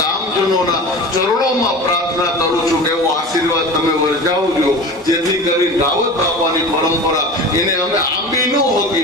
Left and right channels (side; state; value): both; normal; correlation 0.34